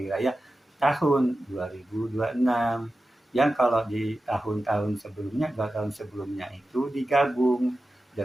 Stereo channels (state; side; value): normal; both; correlation 0.93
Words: raya tahun 2026. Yang kalau di tahun-tahun sebelumnya, 2 tahun sebelumnya itu digabung